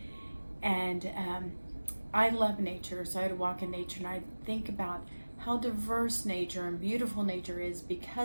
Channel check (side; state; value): both; inverted; correlation -1.00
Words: And I love nature, so I'd walk in nature and I'd think about how diverse nature and beautiful nature is